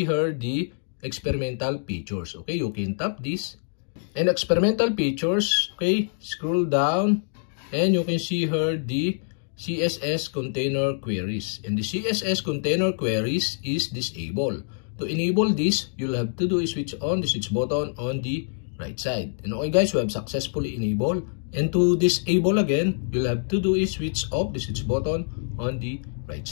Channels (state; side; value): silent; right; digital silence